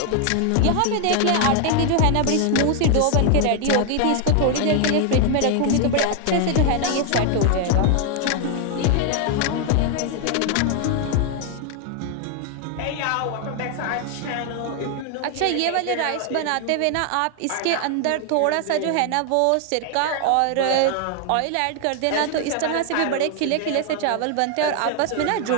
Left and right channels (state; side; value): different; both; correlation 0.00